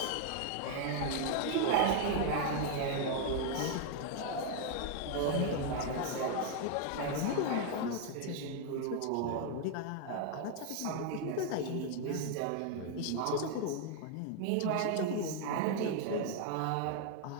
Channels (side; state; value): both; different; correlation 0.00